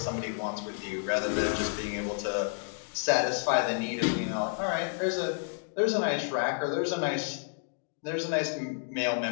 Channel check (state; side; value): silent; right; digital silence